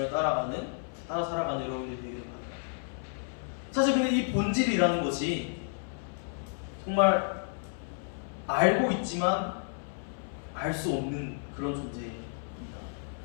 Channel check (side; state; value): right; silent; 57 dB below the other